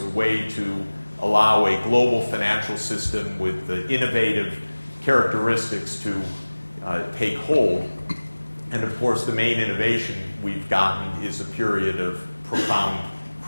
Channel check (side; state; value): both; inverted; correlation -1.00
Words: way to allow a global financial system with innovative characteristics to take hold. And of course, the main innovation we've gotten is a period of profound